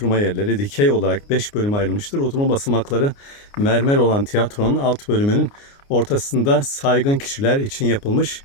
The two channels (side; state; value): right; late; 29 ms